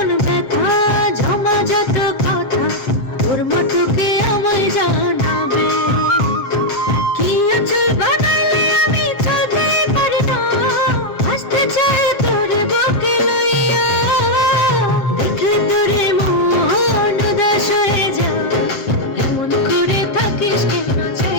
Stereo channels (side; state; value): right; late; 7.4 ms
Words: ব্যথা, জমাজাত কথা, তোর মতো কে আমায় জানাবে? কি আঁচল বানাইলে আমি চলতে পারি না, আসতে চাই তোরে বুকে লইয়া। দেখলে তোরে মন উদাস হয়ে যায়, এমন করে থাকিস কেন